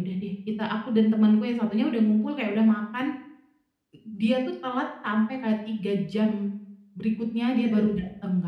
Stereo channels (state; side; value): identical; both; correlation 1.00